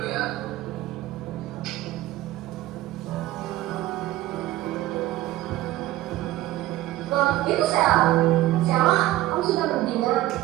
ya. Itu Sheila, kamu sudah berdina?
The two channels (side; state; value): left; quieter; 15.7 dB